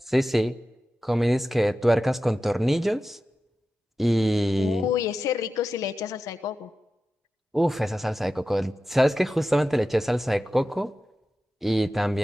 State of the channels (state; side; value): normal; both; correlation 0.93